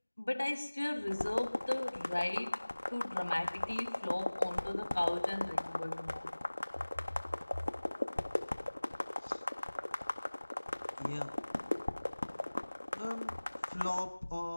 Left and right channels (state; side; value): inverted; both; correlation -1.00